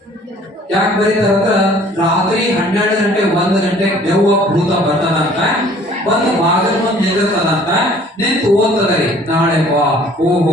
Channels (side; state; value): both; normal; correlation 0.54